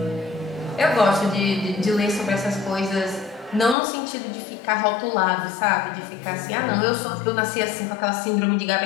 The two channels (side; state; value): right; drops out; at 3.8 s